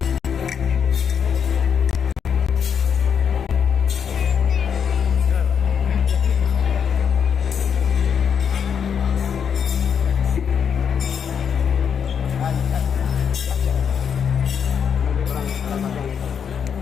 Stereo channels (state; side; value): quieter; right; 7.4 dB